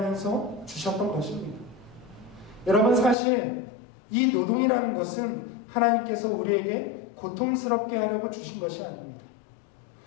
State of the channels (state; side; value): drops out; right; at 3.2 s